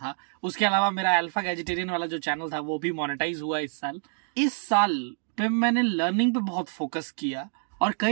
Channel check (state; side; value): silent; left; digital silence